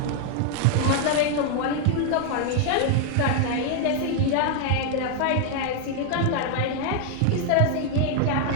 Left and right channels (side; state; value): both; different; correlation 0.00